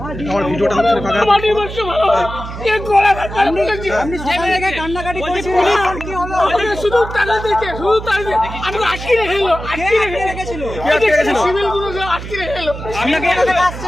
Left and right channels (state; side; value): noise; right; hum, 9 dB below the sound